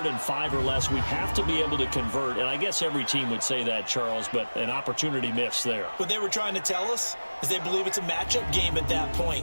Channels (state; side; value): inverted; both; correlation -1.00